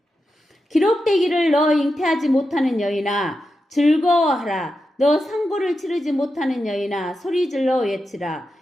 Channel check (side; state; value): both; normal; correlation 0.89